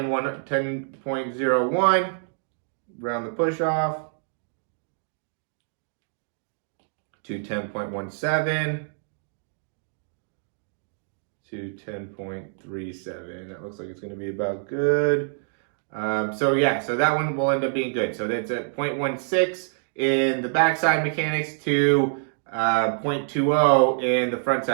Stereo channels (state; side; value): silent; left; digital silence